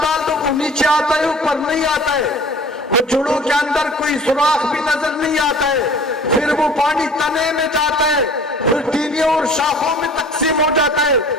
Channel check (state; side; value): normal; both; correlation 0.46